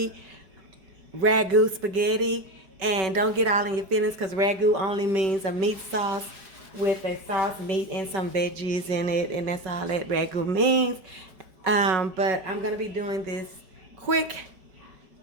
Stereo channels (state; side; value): late; left; 5.3 ms